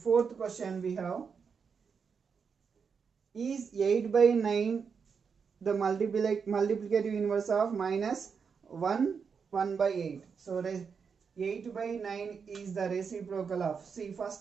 question we have. Is 8 by 9 the multiplicative inverse of minus 1 by 8? So 8 by 9 is the reciprocal of, see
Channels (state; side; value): quieter; left; 6.0 dB